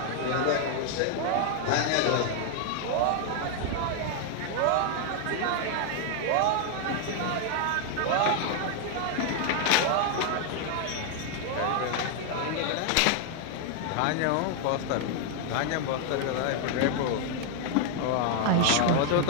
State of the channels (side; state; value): both; different; correlation 0.00